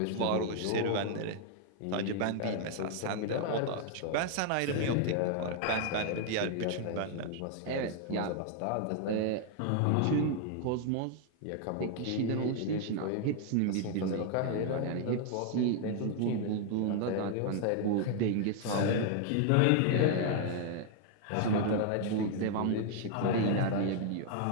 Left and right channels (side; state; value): both; different; correlation 0.00